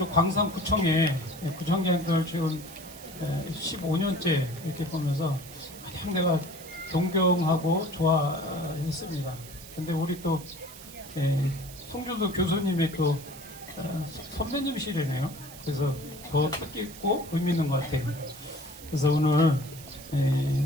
광산구청에 구청장들 지금 15년째 이렇게 보면서 가장 내가 존경하고 좋아했습니다. 근데 우리 또 송준수 교수님의 또 선배님이시래네요. 그래서 더 뜻깊고 의미 있는 것 같아요. 그래서 오늘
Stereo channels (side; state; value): right; noise; hiss, 16 dB below the sound